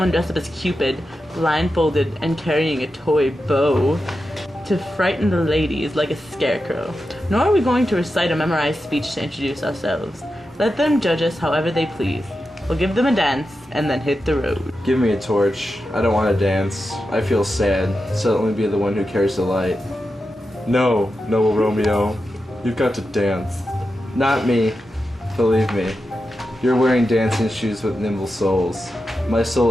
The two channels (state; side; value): normal; both; correlation 0.90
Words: dressed up as Cupid, blindfolded and carrying a toy bow to frighten the ladies like a scarecrow. Nor are we going to recite a memorized speech to introduce ourselves. Let them judge us however they please. We'll give them a dance and then hit the road. Give me a torch. I don't want to dance. I feel sad, so let me be the one who carries the light. No, noble Romeo. You've got to dance. Not me. Believe me. You're wearing dancing shoes with nimble soles. My